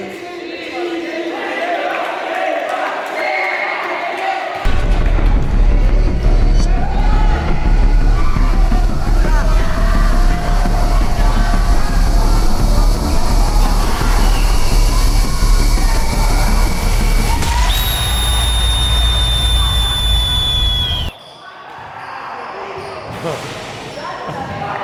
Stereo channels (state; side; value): identical; both; correlation 1.00